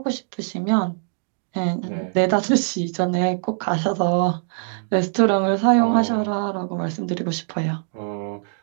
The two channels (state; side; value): silent; left; digital silence